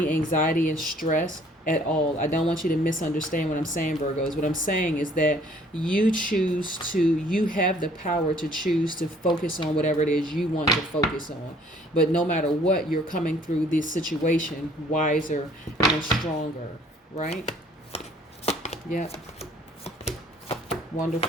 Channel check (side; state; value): both; normal; correlation 0.58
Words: anxiety and stress at all. I don't want you to misunderstand what I'm saying, Virgos. What I'm saying is that you have the power to choose to focus on whatever it is you want to focus on. But no matter what, you're coming through this situation wiser and stronger, right? Yep.